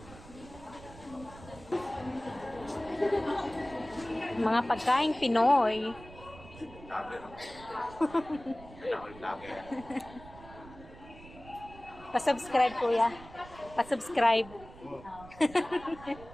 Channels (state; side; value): noise; right; rumble, 18 dB below the sound